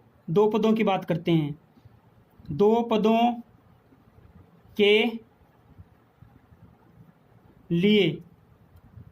दो पदों की बात करते हैं। दो पदों के लिए,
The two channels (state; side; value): identical; both; correlation 1.00